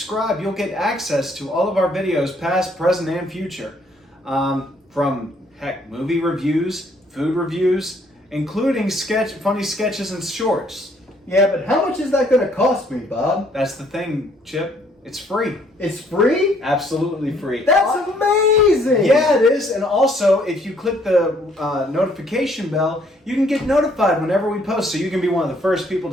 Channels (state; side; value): normal; both; correlation 0.65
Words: you'll get access to all of our videos, past, present, and future. From, heck, movie reviews, food reviews, including funny sketches and shorts. Yeah, but how much is that going to cost me, Bob? That's the thing, Chip. It's free. It's free? Absolutely free. That's amazing! Yeah, it is. And also, if you click the notification bell, you can get notified whenever we post, so you can be one of the first people